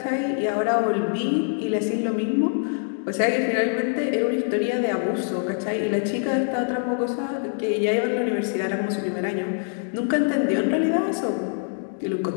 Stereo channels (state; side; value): silent; right; 62 dB below the other